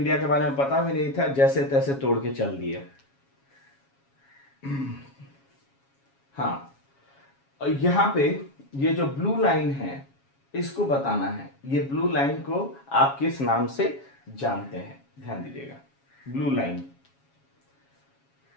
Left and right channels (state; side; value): late; right; 7.3 ms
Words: के बारे में पता भी नहीं था, जैसे तैसे तोड़ के चल दिए। हाँ, यहां पे ये जो ब्लू लाइन है इसको बताना है। ये ब्लू लाइन को आप किस नाम से जानते हैं? ध्यान दीजिएगा, ब्लू लाइन।